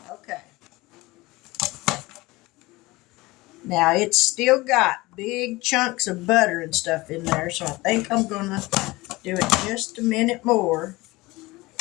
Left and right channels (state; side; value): quieter; right; 21.0 dB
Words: Now it's still got big chunks of butter and stuff in there, so I think I'm going to do it just a minute more.